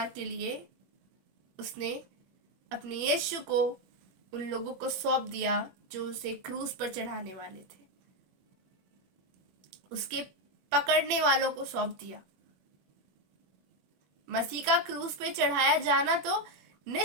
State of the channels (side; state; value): left; late; 21 ms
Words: के लिए उसने अपने यीशु को उन लोगों को सौंप दिया जो उसे क्रूस पर चढ़ाने वाले थे। उसके पकड़ने वालों को सौंप दिया। मसीह का क्रूस पे चढ़ाया जाना तो